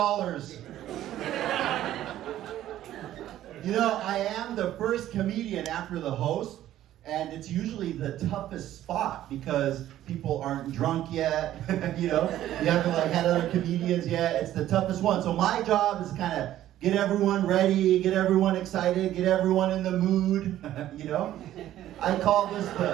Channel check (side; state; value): left; quieter; 13.0 dB